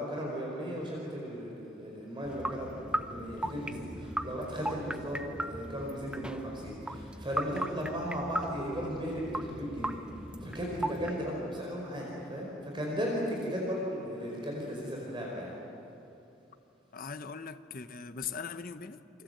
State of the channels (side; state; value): both; normal; correlation 0.62